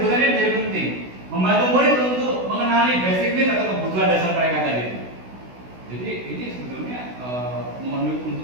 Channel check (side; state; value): left; late; 16 ms